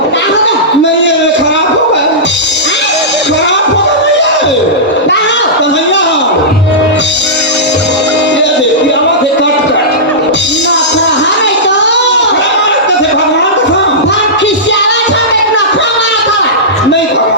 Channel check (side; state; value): both; normal; correlation -0.16